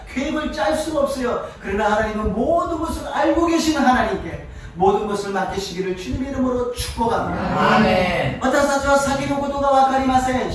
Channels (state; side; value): identical; both; correlation 1.00